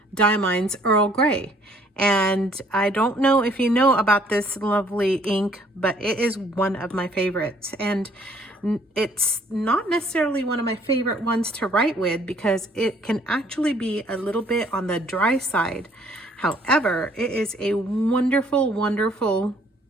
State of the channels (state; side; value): normal; both; correlation 0.61